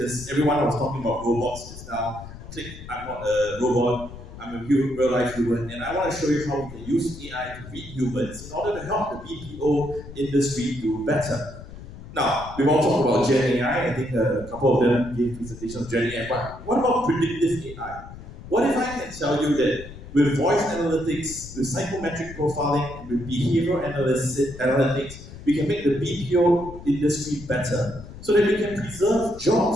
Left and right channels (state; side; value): noise; left; rumble, 14 dB below the sound